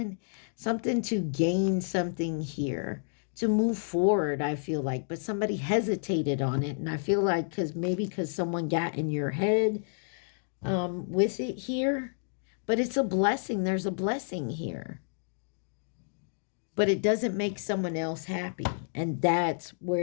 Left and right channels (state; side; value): silent; right; digital silence